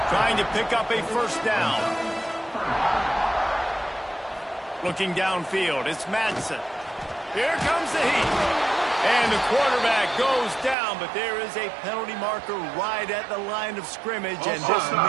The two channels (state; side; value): drops out; left; at 10.8 s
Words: Trying to pick up a first down. Looking downfield, it's Madsen. Here comes the heat. And the quarterback goes down, but there is a penalty marker right at the line of scrimmage, and this